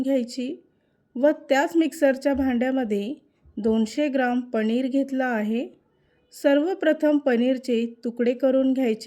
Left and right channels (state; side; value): identical; both; correlation 1.00